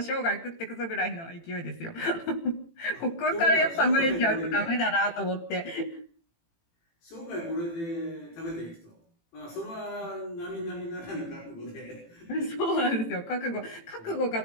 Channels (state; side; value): late; right; 18 ms